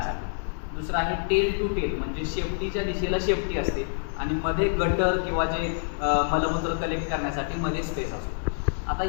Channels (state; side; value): silent; right; digital silence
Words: दुसरं आहे टेल टू टेल, म्हणजे शेपटीच्या दिशेला शेपटी असते आणि मध्ये गटर किंवा जे मलमूत्र कलेक्ट करण्यासाठी मध्ये स्पेस असतो. आता